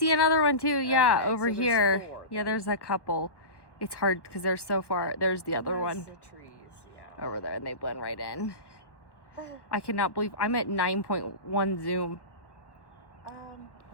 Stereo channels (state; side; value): late; right; 1.2 ms